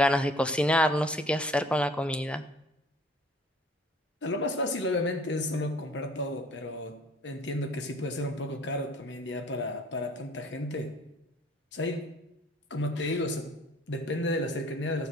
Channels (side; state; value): both; normal; correlation 0.53